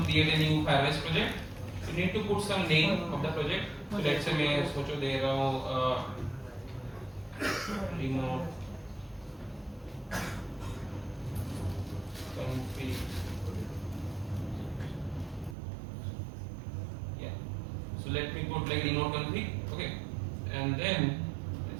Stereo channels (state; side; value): drops out; left; at 15.6 s